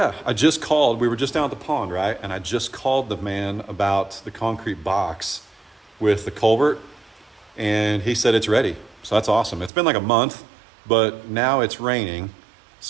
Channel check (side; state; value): left; drops out; at 9.7 s